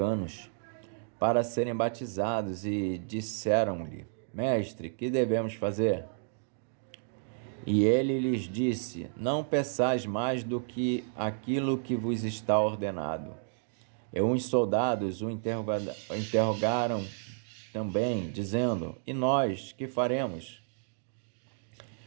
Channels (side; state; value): left; silent; digital silence